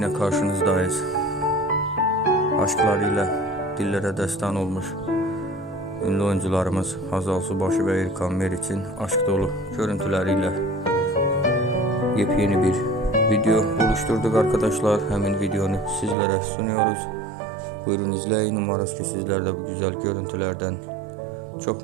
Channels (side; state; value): left; drops out; at 16.2 s